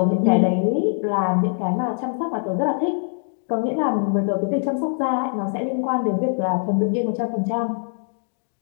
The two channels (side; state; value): right; silent; 62 dB below the other